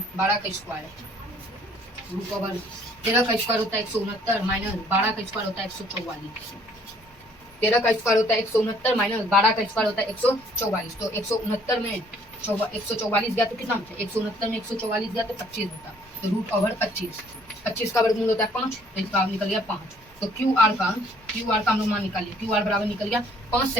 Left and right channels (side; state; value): both; normal; correlation 0.61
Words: का स्क्वायर रूट ओवर 13 का स्क्वायर होता है 169 माइनस 12 का स्क्वायर होता है 144। 13 का स्क्वायर होता है 169 माइनस 12 का स्क्वायर होता है 144। तो 169 में 144 गया तो कितना होता है, 169 में 144 गया तो 25 होता। तो रूट ओवर 25 का वर्गमूल होता है 5, तो इसका निकल गया 5। तो क्यू आर का हम लोग मान निकालिए। क्यू आर बराबर निकल गया 5